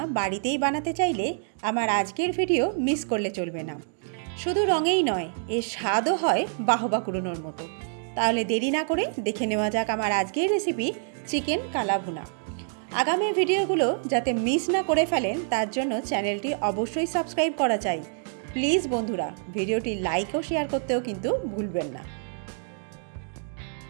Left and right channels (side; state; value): left; silent; 60 dB below the other